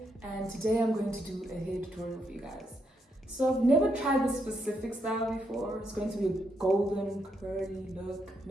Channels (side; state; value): both; normal; correlation 0.79